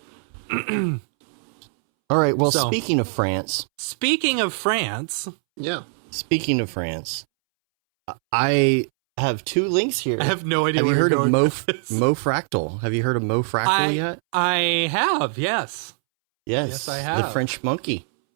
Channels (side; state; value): left; silent; 64 dB below the other